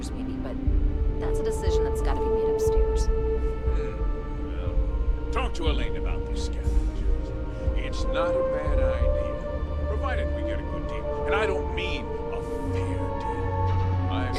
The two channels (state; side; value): identical; both; correlation 1.00